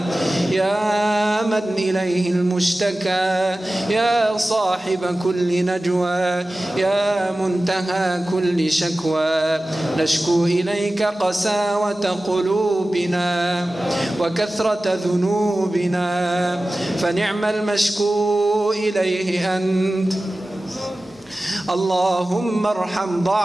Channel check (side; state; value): both; normal; correlation 0.96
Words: يا من إليه المشتكى يا صاحب كل نجوى يا منتهى كل شكوى، نشكو إليك قساوة قلوبنا وكثرة ذنوبنا، فنعم المشكو إليه أنت. اللهم ارحم